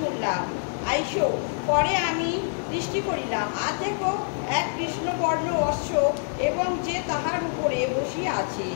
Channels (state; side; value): silent; right; digital silence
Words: আইসো। পরে আমি দৃষ্টি করিলাম, আর দেখো এক কৃষ্ণবর্ণ অশ্ব, এবং যে তাহার উপরে বসিয়া আছে,